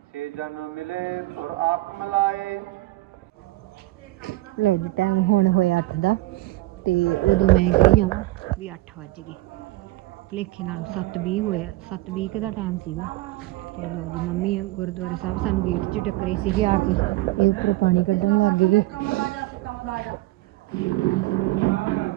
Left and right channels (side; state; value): left; quieter; 18.7 dB